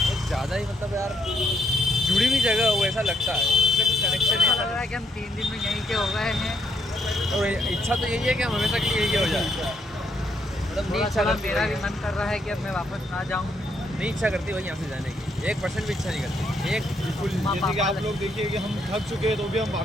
ज़्यादा ही मतलब यार जुड़ी हुई जगह हो ऐसा लगता है, इससे कुछ कनेक्शन ऐसा लग रहा है कि हम 3 दिन में यहीं के हो गए हैं। और इच्छा तो यही है कि हम हमेशा के लिए यही हो जाए। मतलब नहीं थोड़ा इच्छा थोड़ा करती मेरा भी वही है। मन कर रहा है कि अब मैं वापस ना जाऊँ। नहीं इच्छा करती वही यहाँ से जाने की, 1% भी इच्छा नहीं करती। एक बिल्कुल, जैसे कि आप लोग देखिए कि हम थक चुके हैं तो भी हम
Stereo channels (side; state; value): both; normal; correlation 0.75